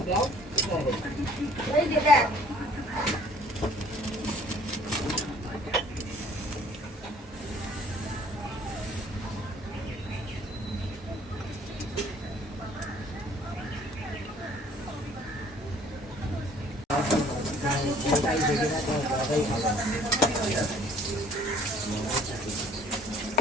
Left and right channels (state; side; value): normal; both; correlation 0.56